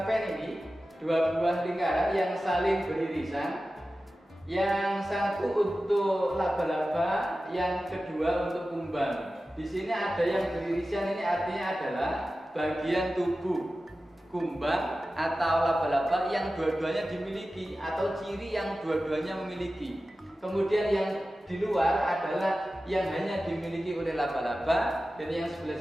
pen ini, dua buah lingkaran yang saling beririsan. Yang satu untuk laba-laba, yang kedua untuk kumbang. Di sini ada yang beririsan, ini artinya adalah bagian tubuh kumbang atau laba-laba yang dua-duanya dimiliki atau ciri yang dua-duanya memiliki. Kemudian yang di luar adalah yang hanya dimiliki oleh laba-laba, dan yang sebelah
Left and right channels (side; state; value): both; normal; correlation 0.94